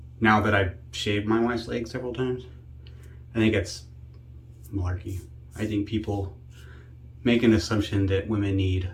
now that I've shaved my wife's legs several times, I think that's malarkey. I think people make an assumption that women need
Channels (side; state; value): both; identical; correlation 1.00